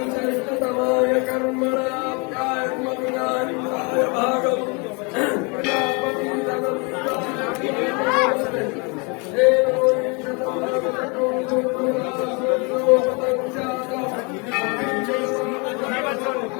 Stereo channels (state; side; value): quieter; right; 31.5 dB